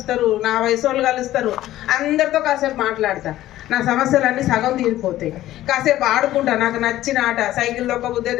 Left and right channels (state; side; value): quieter; right; 14.4 dB